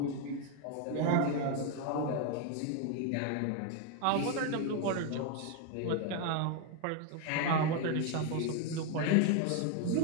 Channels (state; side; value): different; both; correlation 0.01